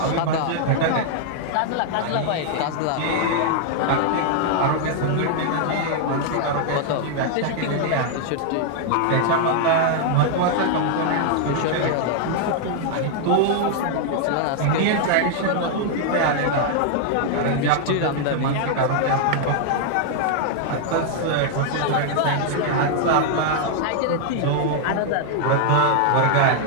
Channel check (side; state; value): both; different; correlation 0.00